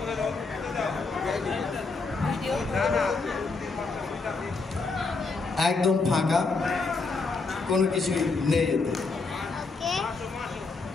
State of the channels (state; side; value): quieter; right; 4.0 dB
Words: একদম ফাঁকা, কোনো কিছুই নেই এতে।